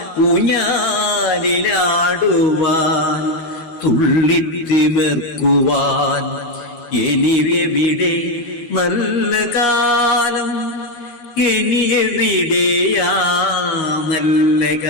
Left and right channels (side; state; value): right; late; 13 ms